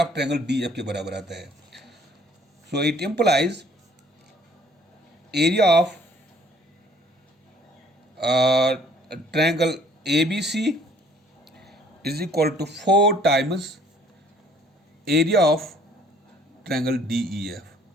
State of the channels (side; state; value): both; normal; correlation 0.58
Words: of triangle DEF के बराबर आता है. So it implies area of triangle ABC is equal to 4 times area of triangle DEF,